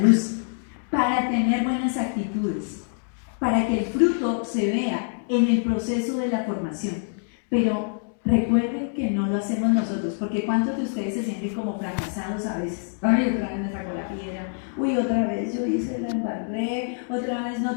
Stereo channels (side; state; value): right; silent; 62 dB below the other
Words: luz para tener buenas actitudes, para que el fruto se vea en el proceso de la formación. Pero recuerden que no lo hacemos nosotros, porque ¿cuántos de ustedes se sienten como fracasados a veces? Ay, otra vez me sacó la piedra, uy, otra vez yo hice la embarré, otra vez